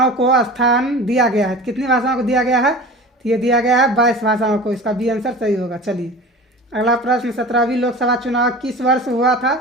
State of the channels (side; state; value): both; normal; correlation 0.37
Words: को स्थान दिया गया है? कितनी भाषाओं को दिया गया है? तो ये दिया गया है 22 भाषाओं को। इसका बी आंसर सही होगा। चलिए अगला प्रश्न, 17वीं लोकसभा चुनाव किस वर्ष हुआ था?